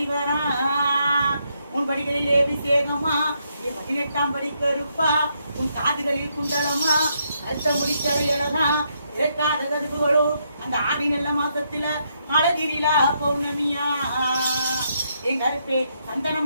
வரா உன் படிகளில் அபிஷேகமா என் 18ஆம் படி கருப்பா உன் காதுகளில் குண்டலமா கருத்த முடித்த இழகா இறக்காத கருப்புகளோ அந்த ஆடி நல்ல மாசத்துல அழகிரிலா பௌர்ணமியா என் கருப்பே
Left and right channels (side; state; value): both; inverted; correlation -0.77